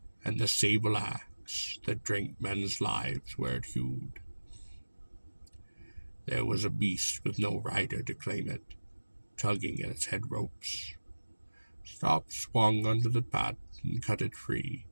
and the sable axe that drank men's lives where it hewed. There was a beast with no rider to claim it, tugging at its head ropes. Stop swung under the path and cut it free.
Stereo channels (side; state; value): both; inverted; correlation -1.00